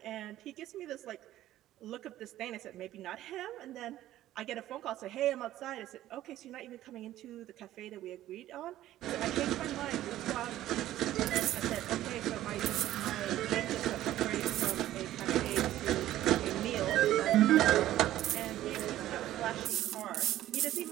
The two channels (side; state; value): left; quieter; 13.8 dB